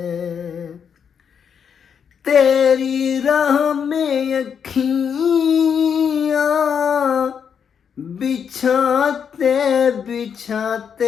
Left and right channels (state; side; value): quieter; right; 7.3 dB